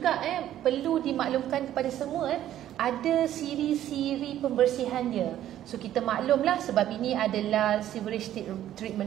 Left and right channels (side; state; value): left; quieter; 12.1 dB